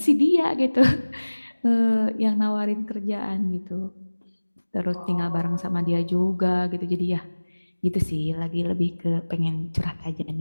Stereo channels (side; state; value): both; inverted; correlation -1.00